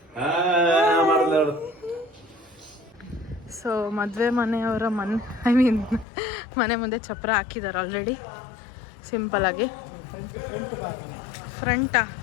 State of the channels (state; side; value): drops out; right; at 6.1 s